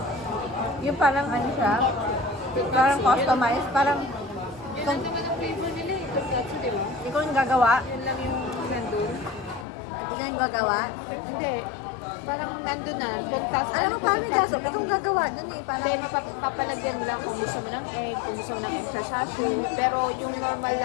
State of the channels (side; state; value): right; drops out; at 9.7 s